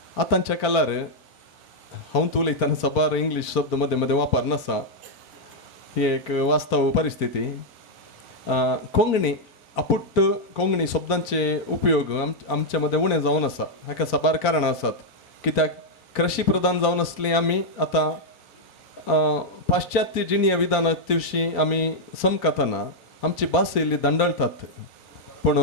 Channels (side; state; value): both; normal; correlation -0.02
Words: आतांच्या काळार हांव उलयतना सबार इंग्लीश शब्द मदें मदें वापर नासा ही एक वास्तव परिस्थिती. कोंकणी अपुट्ट कोंकणी शब्दांचे उपयोग आमच्या मदें उणें जावन आसा हाका सबार कारणां आसात कित्याक कृशी प्रधान जावन आसली आमी आतां पाश्चात्य जिणीय विधानां दिवशी आमी समकतना आमची भास येयली दंडळतात पूण